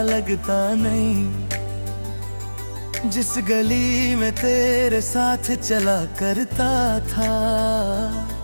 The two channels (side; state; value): both; inverted; correlation -1.00